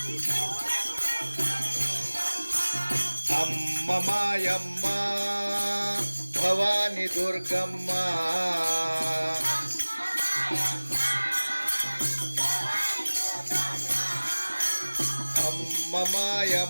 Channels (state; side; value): inverted; both; correlation -1.00